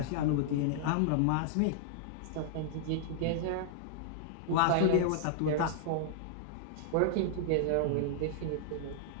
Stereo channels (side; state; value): both; different; correlation -0.01